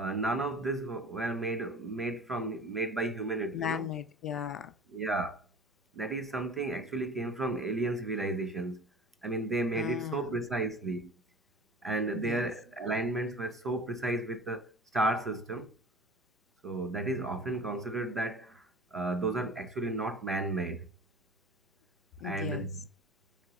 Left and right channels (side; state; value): both; normal; correlation 0.40